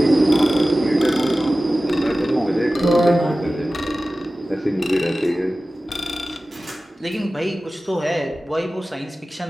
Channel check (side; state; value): both; normal; correlation 0.96